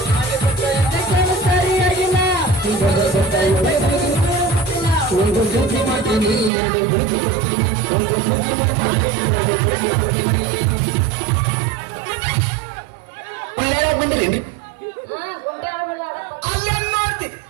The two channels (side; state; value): left; drops out; at 6.5 s